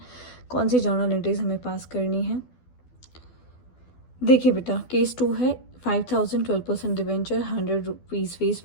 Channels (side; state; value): right; late; 12 ms